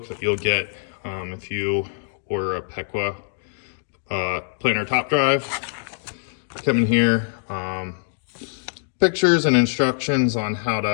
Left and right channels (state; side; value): silent; right; 63 dB below the other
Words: that you'll get if you order a Pequa planter top drive. Come in here, pictures and instructions on how